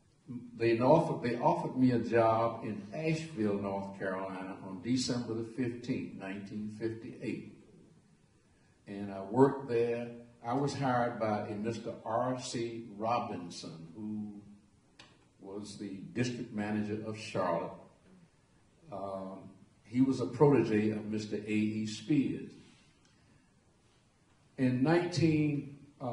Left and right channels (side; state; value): both; identical; correlation 1.00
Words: they offered me a job in Asheville, North Carolina on December the 15th, 1958. And I worked there. I was hired by a Mr. R.C. Robinson, who was the district manager of Charlotte. He was a protege of Mr. A.E. Spears. On